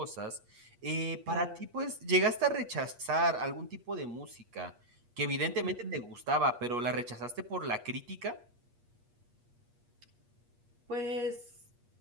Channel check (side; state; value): left; late; 8.4 ms